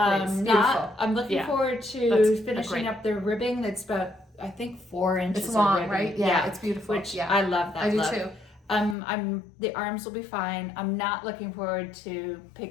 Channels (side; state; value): right; drops out; at 9.0 s